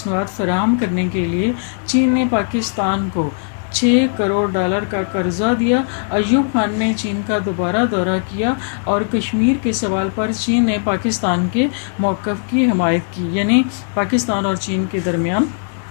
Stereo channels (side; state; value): right; silent; 67 dB below the other